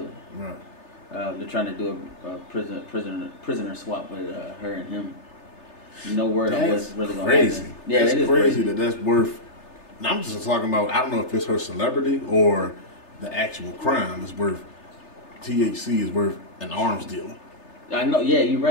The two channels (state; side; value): late; right; 3.3 ms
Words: Right. They're trying to do a prisoner swap with her and him. No word on what's really going to happen. Yeah, that's crazy that's worth. And I'm just talking about. I don't know if it's her celebrity or the actual crime is worth. THC is worth an arms deal. I know. Yeah, you're